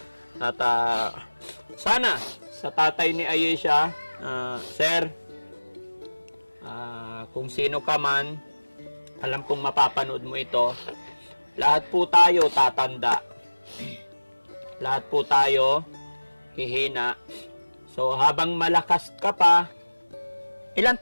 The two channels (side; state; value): both; inverted; correlation -1.00